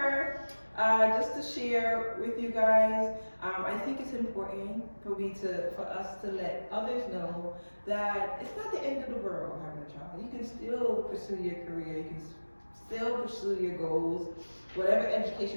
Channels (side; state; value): both; inverted; correlation -1.00